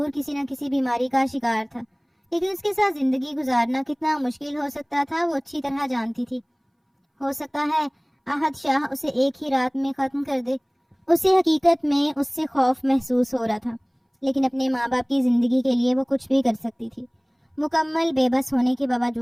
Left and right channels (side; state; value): both; identical; correlation 1.00